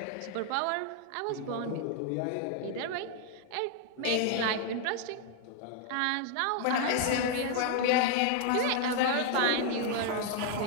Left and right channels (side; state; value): both; different; correlation 0.00